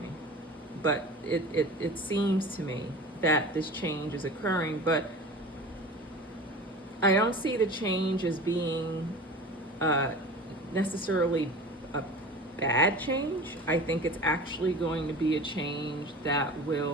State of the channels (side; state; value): both; normal; correlation 0.37